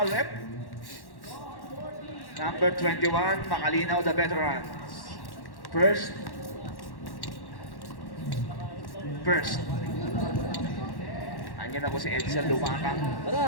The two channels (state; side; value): late; right; 1.1 ms